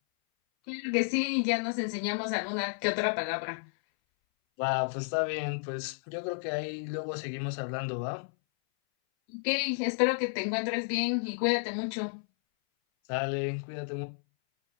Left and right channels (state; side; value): silent; right; 57 dB below the other